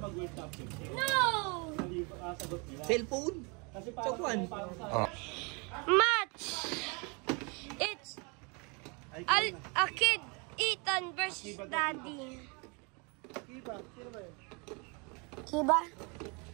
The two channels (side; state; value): left; quieter; 31.6 dB